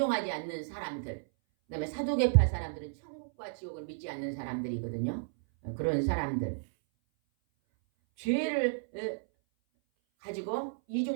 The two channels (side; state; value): left; silent; 56 dB below the other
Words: 않는 사람들. 그 다음에 사두개파 사람들은 천국과 지옥을 믿지 않는 사람들이거든요. 그런 사람들. 죄를 가지고